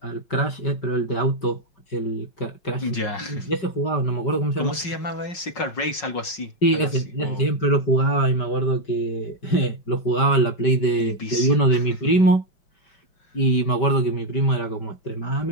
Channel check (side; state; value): right; late; 5.5 ms